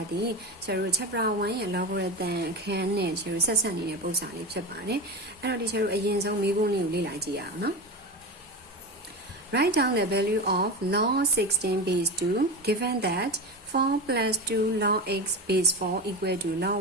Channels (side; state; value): both; normal; correlation 0.23